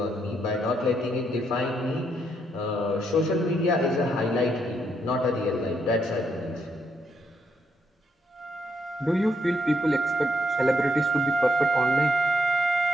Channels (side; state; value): both; normal; correlation 0.76